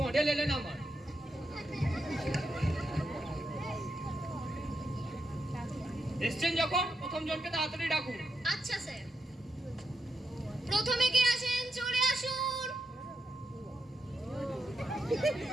এলেন আমার। এসছেন যখন প্রথম জনকে তাড়াতাড়ি ডাকুন। আচ্ছা স্যার, প্রথমে কে আসেন চলে আসুন।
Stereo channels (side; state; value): both; normal; correlation 0.83